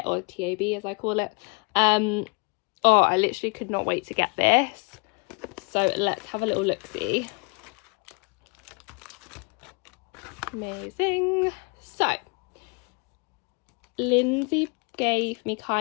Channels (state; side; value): quieter; right; 32.5 dB